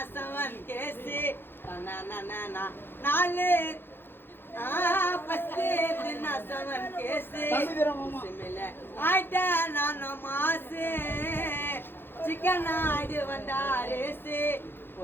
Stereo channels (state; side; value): late; right; 0.10 ms